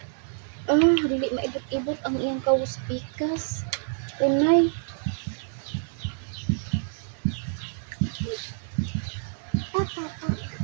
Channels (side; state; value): left; silent; digital silence